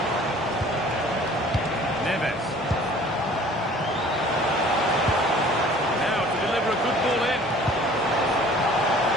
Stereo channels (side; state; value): both; normal; correlation 0.50